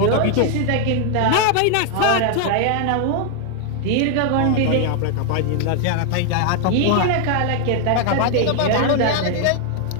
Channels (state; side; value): different; both; correlation 0.00